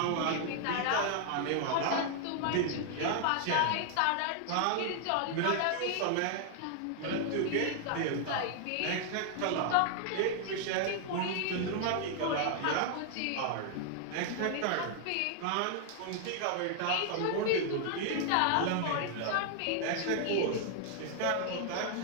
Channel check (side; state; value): both; different; correlation 0.00